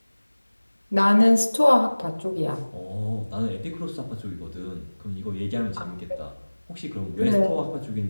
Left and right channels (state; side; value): inverted; both; correlation -1.00